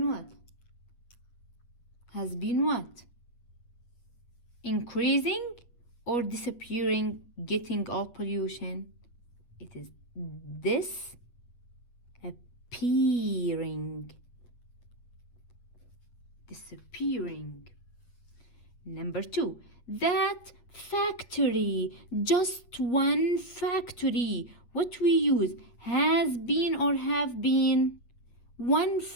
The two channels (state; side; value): late; right; 8.5 ms